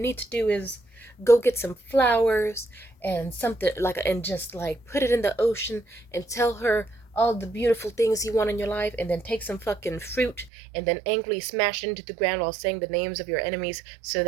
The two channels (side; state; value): left; drops out; at 10.5 s